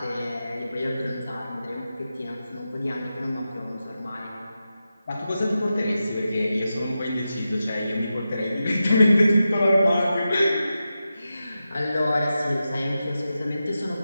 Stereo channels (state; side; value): inverted; both; correlation -0.91